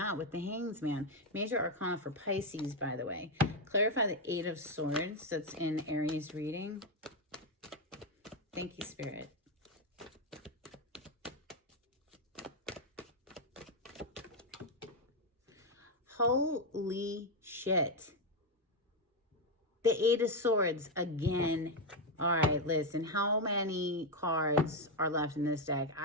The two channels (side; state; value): both; normal; correlation 0.05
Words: with the Hanged Man. Major Arcana for Pisces, by the way. Clarify the 8 of Swords that's in Aries reading. Thank you, Spirit. Holy shit. The 8 of Swords again. All right, listen. How many cards are left in this deck?